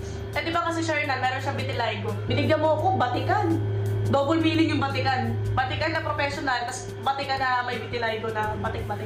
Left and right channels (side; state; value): both; identical; correlation 1.00